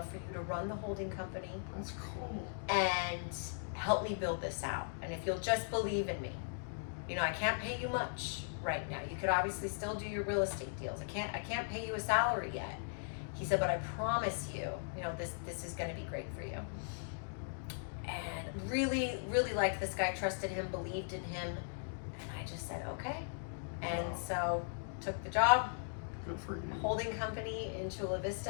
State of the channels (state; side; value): silent; right; digital silence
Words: for you to run the holding company That's cool. and help me build this out. And if you'll just believe in me, you know, I can't pay you much right now. You could obviously still do your real estate deals. I can't pay you a salary yet. He said, but I promise you, you know, this is going to be great for you. And really, really liked this guy, trusted him, believed in him. And I just said, okay. And Wow. so took the job, Good for you. holding company in Chula